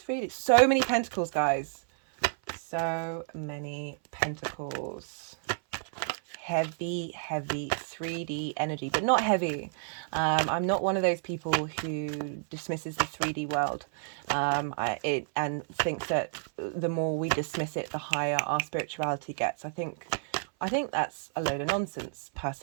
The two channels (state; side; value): silent; left; 58 dB below the other